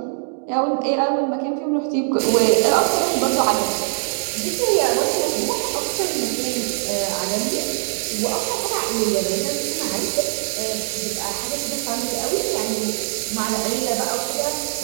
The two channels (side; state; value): left; silent; digital silence